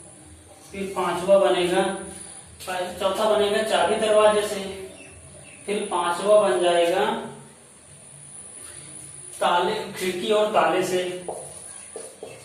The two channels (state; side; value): identical; both; correlation 1.00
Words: फिर पांचवा बनेगा, चौथा बनेगा चाबी दरवाजे से। फिर पांचवा बन जाएगा ताले, खिड़की और ताले से,